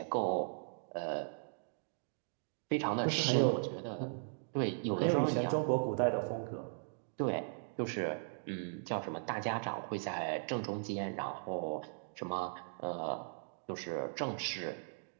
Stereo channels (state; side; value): silent; left; digital silence